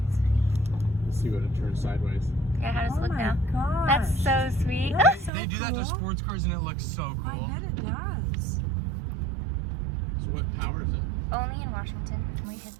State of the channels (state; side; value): drops out; left; at 5.3 s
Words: That's funny. See what it turns sideways. Yeah, how does it Oh look my now? gosh. That's so sweet. That's so They do that to cool. sports cars and it looks so I cool. bet it does. So what power is it? Only in Washington. We hit